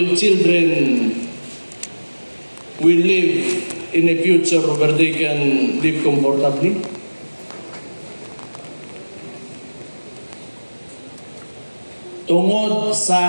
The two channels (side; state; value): both; inverted; correlation -1.00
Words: children will live in a future where they can live comfortably? Tungod